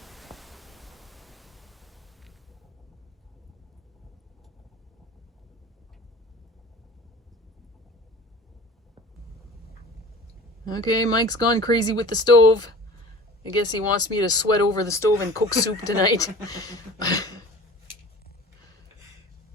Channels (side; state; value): both; normal; correlation 0.42